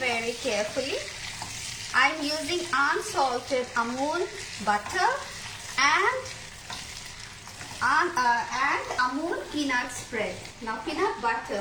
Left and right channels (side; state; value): both; identical; correlation 1.00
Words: carefully. I'm using unsalted Amul butter and Amul peanut spread. Now peanut